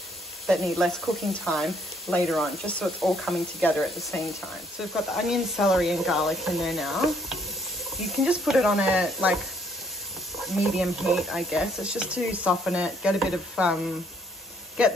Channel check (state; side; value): normal; both; correlation 0.67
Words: that need less cooking time later on, just so it's all coming together at the same time. So we've got the onion, celery and garlic in there now. You can just put it on a like medium heat, I guess. It's just to soften it, get a bit of get